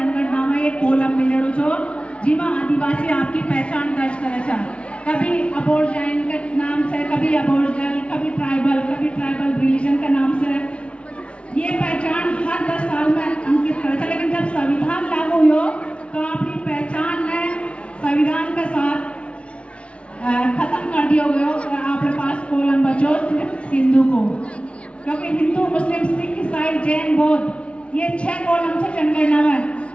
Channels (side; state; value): right; late; 0.060 ms